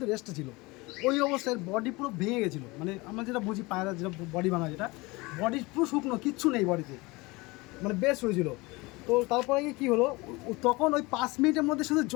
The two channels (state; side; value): quieter; right; 23.7 dB